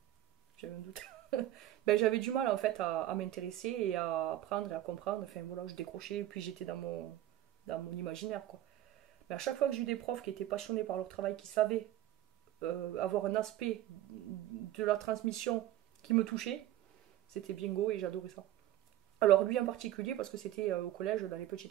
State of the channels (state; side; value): quieter; left; 13.6 dB